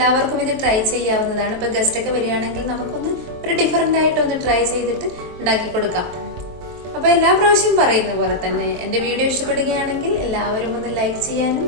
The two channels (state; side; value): late; left; 23 ms